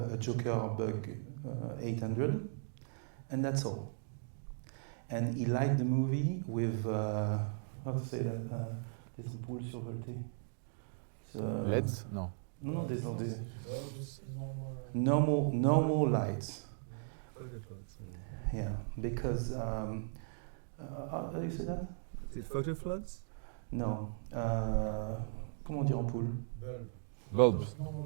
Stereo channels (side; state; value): left; silent; digital silence